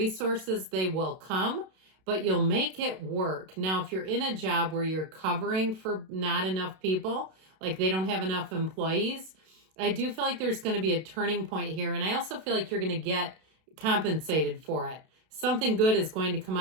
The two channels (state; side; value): late; left; 32 ms